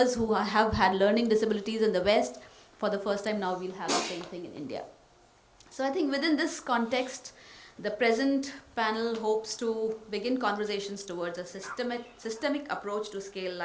who have had learning disabilities in the West. For the first time now, we'll have the same thing in India. So I think within this context, the present panel hopes to begin conversations towards a systemic approach to scale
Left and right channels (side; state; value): both; identical; correlation 1.00